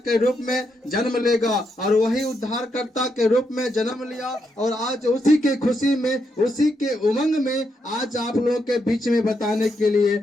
रूप में जन्म लेगा, और वही उद्धारकर्ता के रूप में जन्म लिया। और आज उसी के खुशी में, उसी के उमंग में आज आप लोगों के बीच में बताने के लिए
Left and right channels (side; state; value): both; normal; correlation 0.80